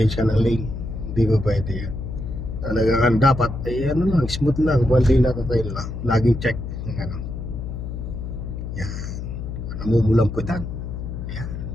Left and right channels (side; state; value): left; noise; hum, 6 dB below the sound